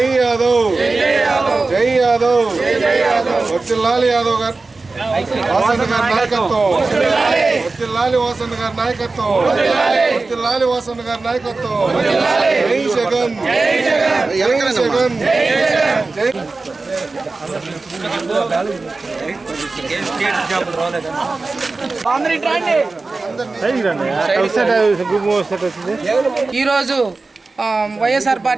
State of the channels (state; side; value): quieter; left; 3.7 dB